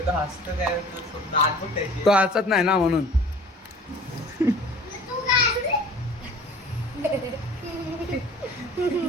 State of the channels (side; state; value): both; normal; correlation 0.46